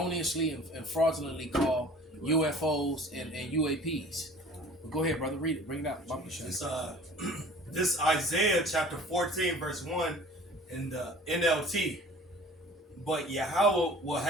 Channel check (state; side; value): normal; both; correlation 0.46